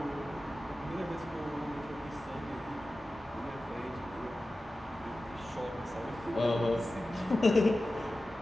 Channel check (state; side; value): normal; both; correlation 0.95